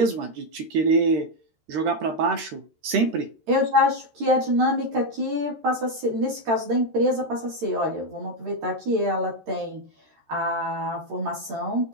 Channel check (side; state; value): left; late; 13 ms